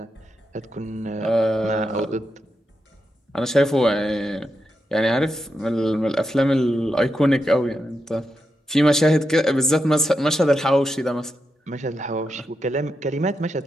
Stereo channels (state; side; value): normal; both; correlation 0.86